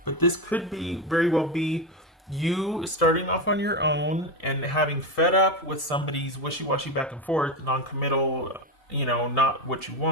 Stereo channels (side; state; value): both; normal; correlation 0.13